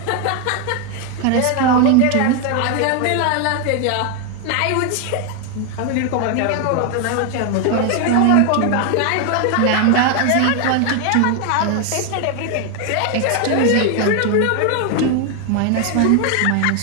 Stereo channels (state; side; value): different; both; correlation 0.01